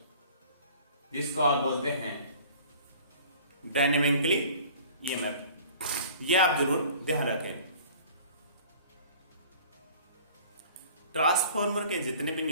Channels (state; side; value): inverted; both; correlation -0.48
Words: जिसको आप बोलते हैं डायनेमिकली ईएमएफ। ये आप जरूर ध्यान रखें। ट्रांसफार्मर के जितने भी